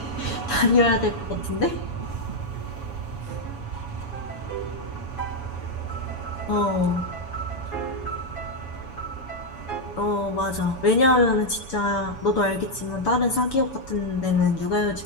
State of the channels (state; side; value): late; right; 7.1 ms